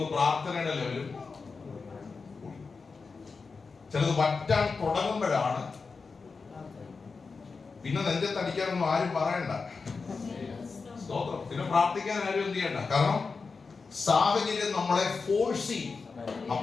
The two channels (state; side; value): quieter; right; 4.6 dB